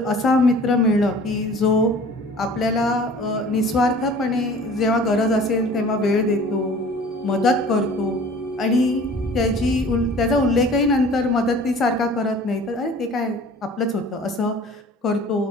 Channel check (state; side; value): normal; both; correlation 0.46